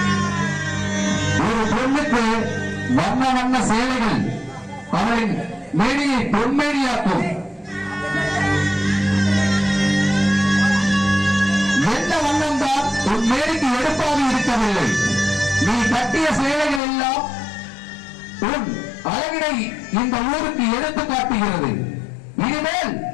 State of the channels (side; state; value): right; drops out; at 16.8 s